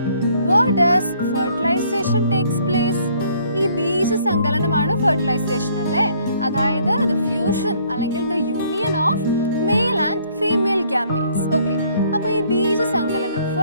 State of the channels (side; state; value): both; inverted; correlation -0.63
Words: Where does fertilization takes place? ഈ ബീജസങ്കലനമാണ് ഫെർട്ടിലൈസേഷൻ അല്ലേ, അതായത് the fusion അല്ലെങ്കിൽ the union of male and female gametes. Okay, അപ്പൊ ഈ ബീജസങ്കലനം